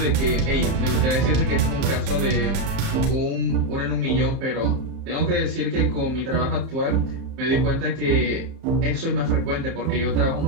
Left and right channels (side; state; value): left; late; 30 ms